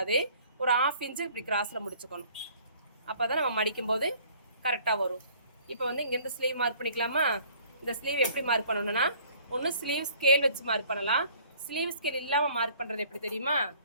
ஒரு 1/2 இன்ச்சு இப்படி கிராஸில் முடிச்சுக்கணும். அப்போ தான் நம்ம மடிக்கும்போது கரெக்டாக வரும். இப்போ வந்து இங்கேருந்து ஸ்லீவ் மார்க் பண்ணிக்கலாமா? இந்த ஸ்லீவ் எப்படி மார்க் பண்ணணும்னா, ஒன்று ஸ்லீவ் ஸ்கேல் வச்சு மார்க் பண்ணலாம். ஸ்லீவ் ஸ்கேல் இல்லாமல் மார்க் பண்ணுறது எப்படி தெரியுமா?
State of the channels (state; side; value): inverted; both; correlation -0.55